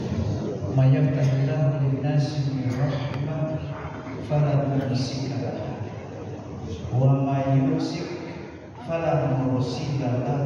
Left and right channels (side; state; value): both; identical; correlation 1.00